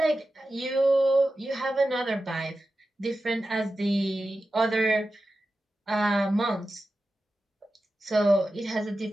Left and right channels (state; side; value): normal; both; correlation 0.92